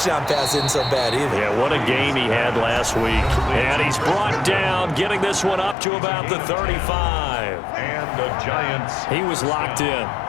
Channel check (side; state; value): right; drops out; at 5.8 s